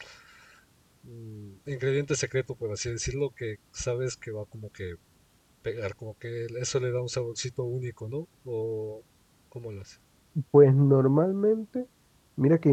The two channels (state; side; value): identical; both; correlation 1.00